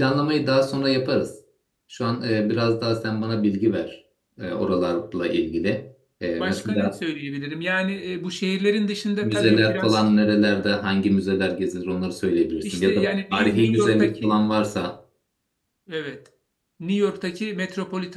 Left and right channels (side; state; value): both; identical; correlation 1.00